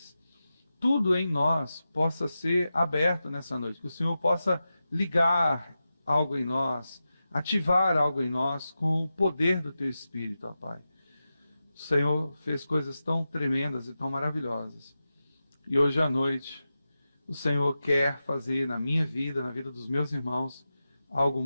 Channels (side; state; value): both; inverted; correlation -0.92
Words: tudo em nós possa ser aberto nessa noite, que o Senhor possa ligar algo em nós, ativar algo em nós com o poder do Teu Espírito, ó Pai. O Senhor fez coisas tão tremendas e tão maravilhosas. E hoje à noite, o Senhor quer fazer na minha vida, na vida dos meus irmãos, algo